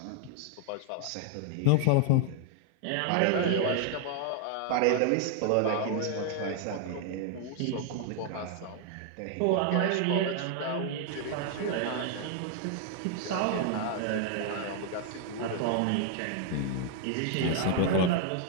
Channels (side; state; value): both; different; correlation 0.00